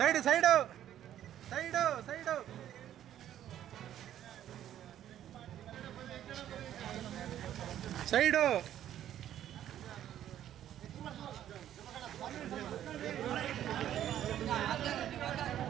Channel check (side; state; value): left; quieter; 11.4 dB